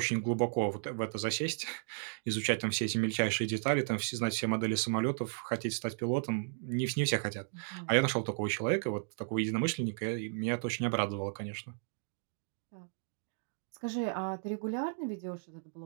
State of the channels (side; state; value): left; silent; digital silence